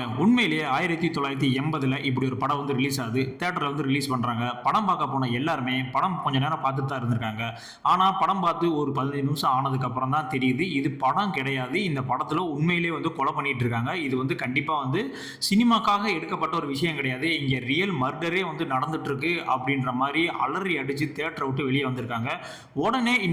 உண்மையிலேயே 1980 இப்படி ஒரு படம் வந்து ரிலீஸ் ஆகுது. தேட்டரில் வந்து ரிலீஸ் பண்றாங்க. படம் பார்க்க போன எல்லாருமே படம் கொஞ்ச நேரம் பார்த்துட்டு தான் இருந்திருக்காங்க. ஆனால் படம் பார்த்து ஒரு 15 நிமிஷம் ஆனதுக்கு அப்புறம் தான் தெரியுது இது படம் கிடையாது. இந்த படத்தில் உண்மையிலேயே வந்து கொலை பண்ணிட்டு இருக்காங்க. இது வந்து கண்டிப்பாக வந்து சினிமாக்காக எடுக்கப்பட்ட ஒரு விஷயம் கிடையாது. இங்க ரியல் மர்டரே வந்து நடந்துட்டு இருக்கு அப்படின்ற மாதிரி அலறி அடிச்சு தியேட்டரை விட்டு வெளியே வந்திருக்காங்க. உடனே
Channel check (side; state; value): both; identical; correlation 1.00